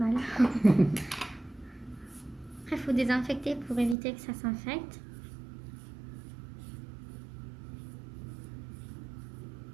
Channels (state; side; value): drops out; left; at 4.0 s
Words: Après, il faut désinfecter pour éviter que ça s'infecte.